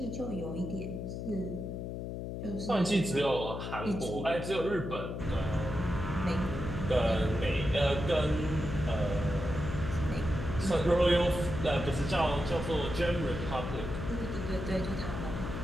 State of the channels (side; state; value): left; noise; hum, 5 dB below the sound